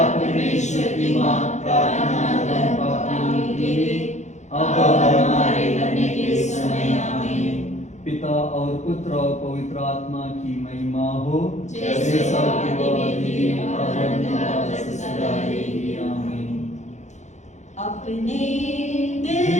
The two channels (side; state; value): right; late; 0.34 ms